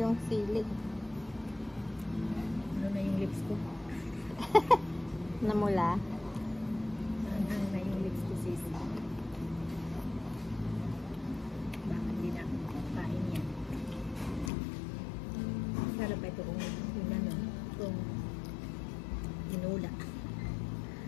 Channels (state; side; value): drops out; right; at 14.5 s